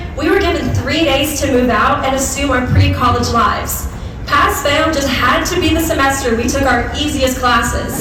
we were given 3 days to move out and assume our pre-college lives. Pass-fail just had to be the semester we took our easiest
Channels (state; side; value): identical; both; correlation 1.00